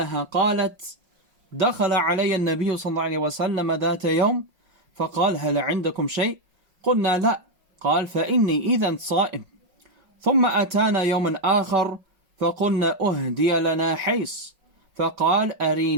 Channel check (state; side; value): late; left; 5.5 ms